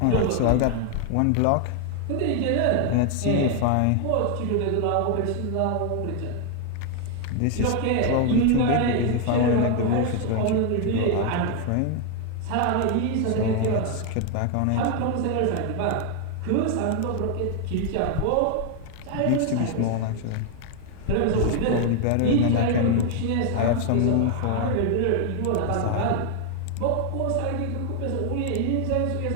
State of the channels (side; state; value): both; different; correlation 0.00